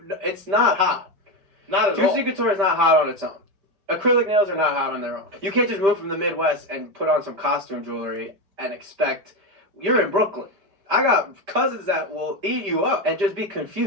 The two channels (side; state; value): left; late; 5.1 ms